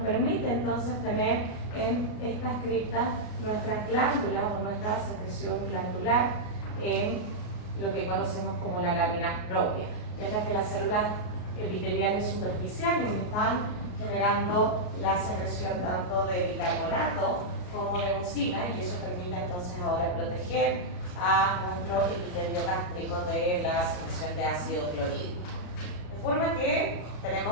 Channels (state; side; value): late; right; 33 ms